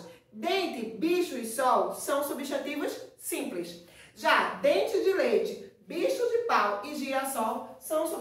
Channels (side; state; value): both; identical; correlation 1.00